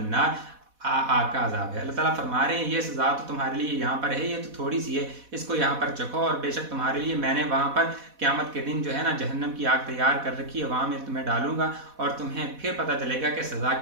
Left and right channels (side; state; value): left; late; 4.1 ms